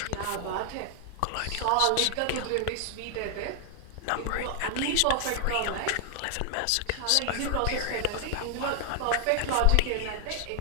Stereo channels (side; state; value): both; different; correlation 0.00